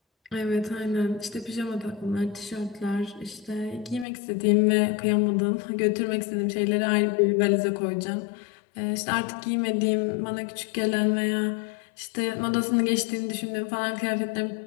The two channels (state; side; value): drops out; right; at 4.0 s